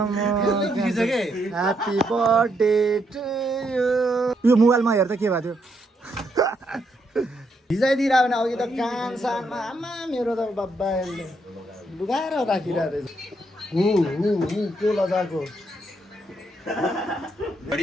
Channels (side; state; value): both; normal; correlation 0.77